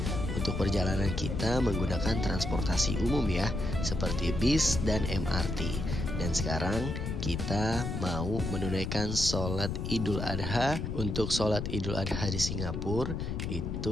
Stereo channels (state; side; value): noise; left; rumble, 3 dB below the sound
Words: Untuk perjalanan kita menggunakan transportasi umum ya, seperti bis dan MRT. Dan sekarang kita mau menunaikan sholat Idul Adha. Untuk sholat Idul Adha di Singapura